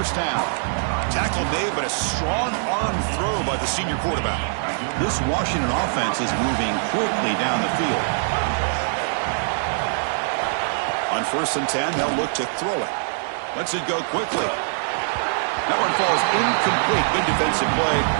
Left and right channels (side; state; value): left; silent; digital silence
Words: down. Tackle made, but a strong arm throw by the senior quarterback. This Washington offense is moving quickly down the field. On 1st and 10, they'll look to throw it. Lets it go quickly. That one falls incomplete. Good defensive play.